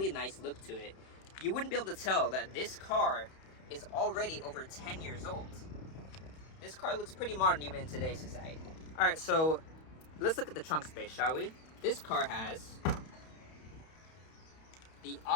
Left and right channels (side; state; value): right; late; 31 ms